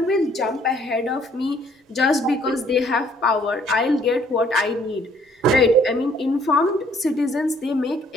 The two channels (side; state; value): both; normal; correlation 0.62